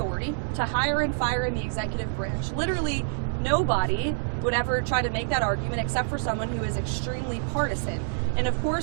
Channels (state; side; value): silent; left; digital silence